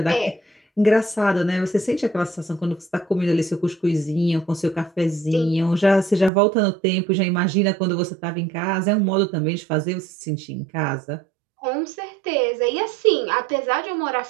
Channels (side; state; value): left; drops out; at 6.3 s